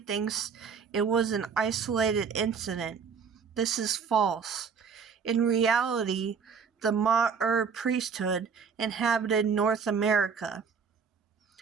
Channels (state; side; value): quieter; left; 6.0 dB